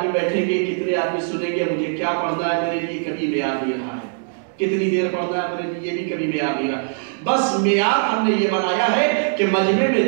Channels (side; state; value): left; silent; digital silence